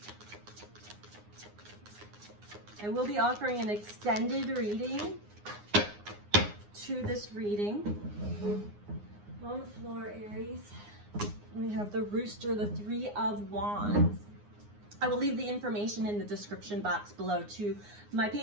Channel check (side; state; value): left; late; 9.7 ms